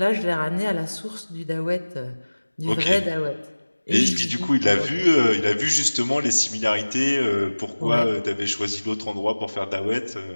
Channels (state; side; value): inverted; both; correlation -1.00